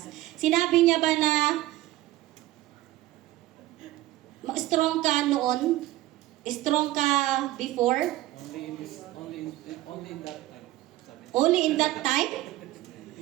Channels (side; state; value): left; quieter; 16.3 dB